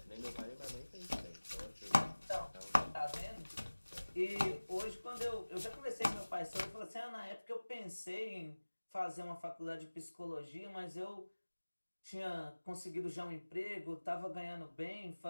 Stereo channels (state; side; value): inverted; both; correlation -1.00